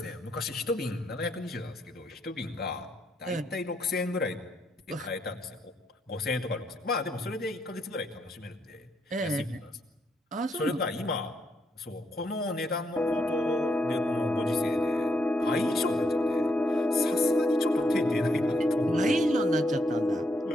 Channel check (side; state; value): both; normal; correlation 0.77